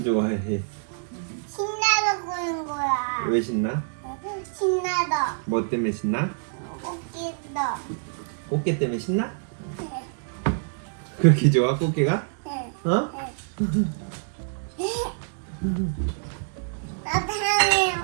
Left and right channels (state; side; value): silent; left; digital silence